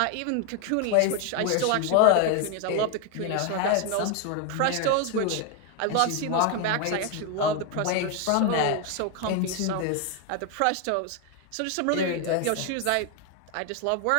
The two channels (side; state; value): both; different; correlation 0.01